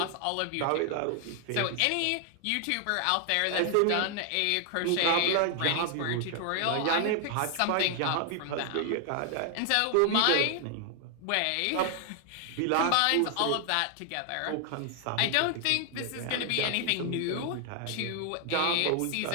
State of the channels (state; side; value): different; both; correlation 0.00